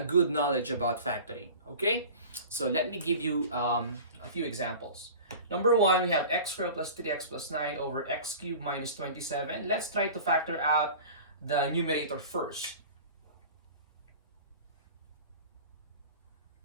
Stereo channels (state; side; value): inverted; both; correlation -0.38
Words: good knowledge about factoring, okay? So let me give you a few examples. Number one, we have x squared plus 3x plus 9 over x cubed minus 27. Let's try to factor out the numerator first.